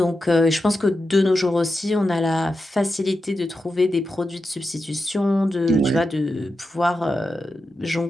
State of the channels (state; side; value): normal; both; correlation 0.89